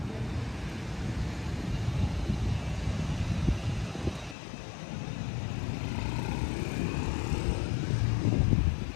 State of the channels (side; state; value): right; drops out; at 4.4 s